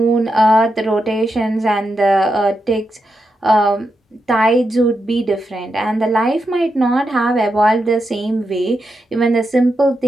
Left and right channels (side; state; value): both; normal; correlation 0.86